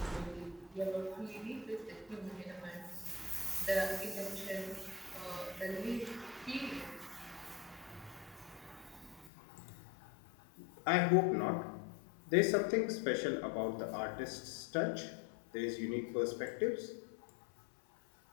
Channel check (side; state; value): right; drops out; at 9.3 s